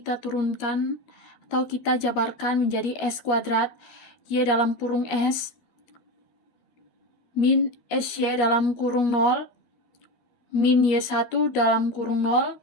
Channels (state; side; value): late; right; 13 ms